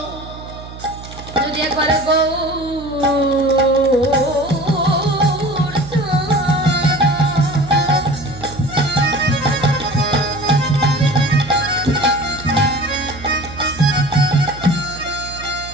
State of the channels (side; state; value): right; noise; hum, 14 dB below the sound